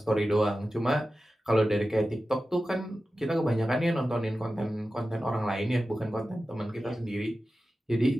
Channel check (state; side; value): normal; both; correlation 0.94